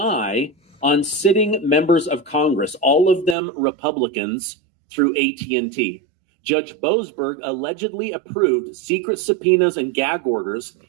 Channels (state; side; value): drops out; left; at 3.4 s